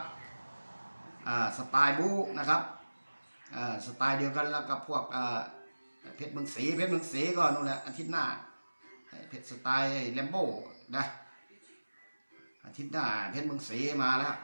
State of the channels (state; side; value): inverted; both; correlation -1.00